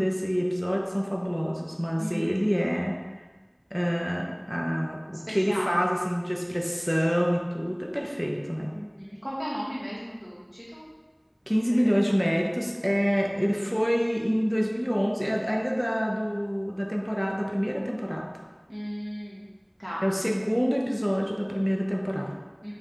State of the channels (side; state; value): both; identical; correlation 1.00